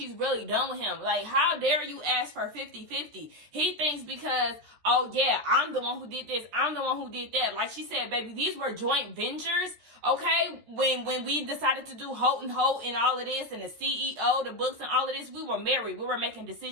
really done with him. Like, how dare you ask for 50-50? He thinks because, oh yeah, I'm the one who did this, I'm the one who did that. Like she said, baby, these were joint ventures, okay? When we decided to do Holt and Holt and all of this and the CEO, the books and all of this, we were married. We were making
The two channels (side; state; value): left; late; 14 ms